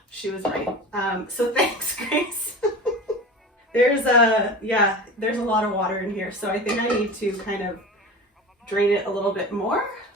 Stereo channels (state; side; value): normal; both; correlation 0.33